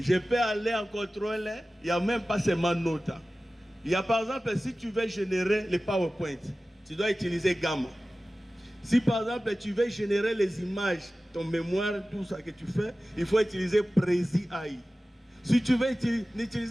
peux aller en contrôle, il n'y a même pas seulement Nota. Il y a par exemple, si tu veux générer les PowerPoint, tu dois utiliser Gamma. Si par exemple, tu veux générer les images, ton mémoire, tout ça que tu fais, il faut utiliser Prezi AI. Si tu veux,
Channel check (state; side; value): normal; both; correlation 0.96